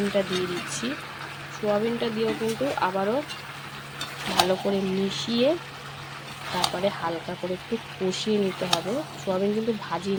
দিয়ে দিচ্ছি। সোয়াবিনটা দিয়েও কিন্তু আবারও ভালো করে মিশিয়ে তারপরে হালকা করে একটু কষিয়ে নিতে হবে। সোয়াবিন কিন্তু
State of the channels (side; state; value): both; identical; correlation 1.00